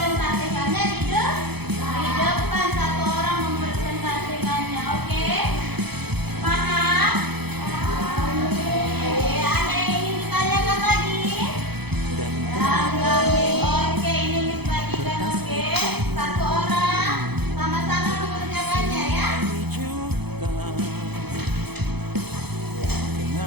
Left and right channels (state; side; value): late; left; 0.98 ms